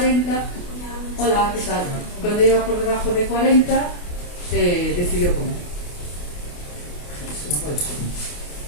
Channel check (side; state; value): right; late; 28 ms